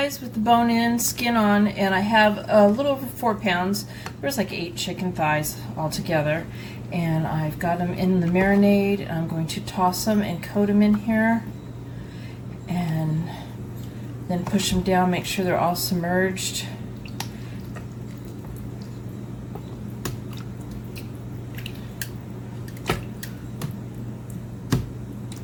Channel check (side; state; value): both; identical; correlation 1.00